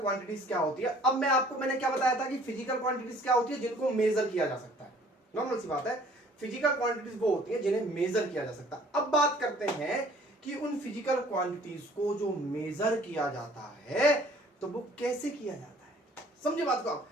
क्वांटिटीज क्या होती है। अब मैंने क्या बताया था कि फिजिकल क्वांटिटीज क्या होती है, जिनको मेजर किया जा सकता है। नॉर्मल सी बात है, फिजिकल क्वांटिटीज वो होती है जिन्हें मेजर किया जा सकता है। अब बात करते हैं कि उन फिजिकल क्वांटिटीज को जो मेजर किया जाता है तो वो कैसे किया जाता है। समझे बात को आप,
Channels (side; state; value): both; normal; correlation 0.55